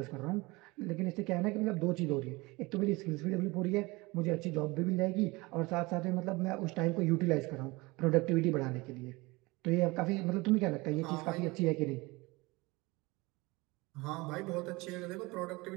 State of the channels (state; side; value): quieter; left; 23.3 dB